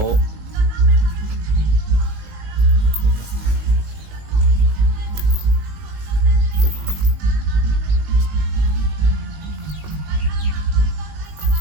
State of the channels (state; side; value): late; left; 19 ms